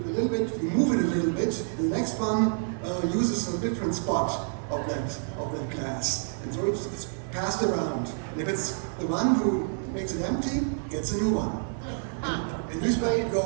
move it a little bit. And the next one uses a different spot of that glass, and so it's passed around. And if it's the one who makes it empty, gets a new one. And this way it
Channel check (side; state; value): left; silent; 59 dB below the other